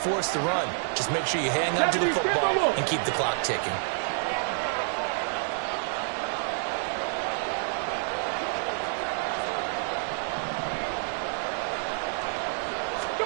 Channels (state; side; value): silent; left; 59 dB below the other